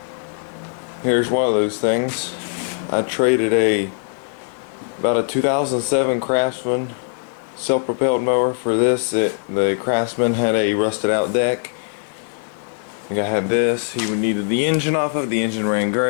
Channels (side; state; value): right; silent; 63 dB below the other